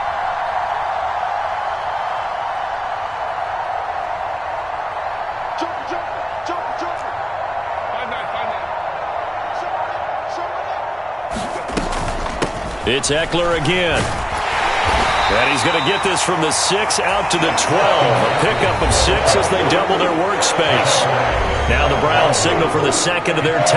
It's Eckler again. And he's going to get this from the 6 out to the 12. A pickup of 6 as they double their workspace. Now the Browns signal for the second of their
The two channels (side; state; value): both; identical; correlation 1.00